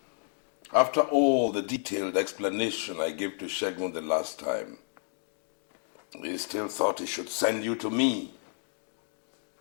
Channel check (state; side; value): silent; right; 57 dB below the other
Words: after all the detailed explanation I gave to Shegun the last time, he still thought he should send you to me.